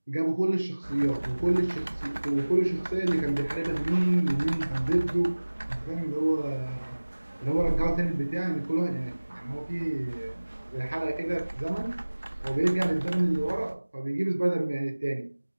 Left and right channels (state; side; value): inverted; both; correlation -1.00